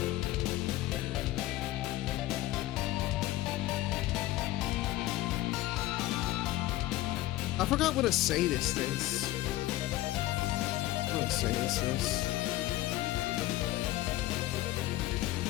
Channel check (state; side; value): quieter; right; 16.4 dB